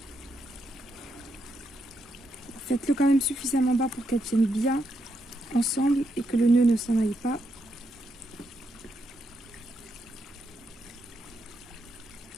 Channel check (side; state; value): both; normal; correlation 0.81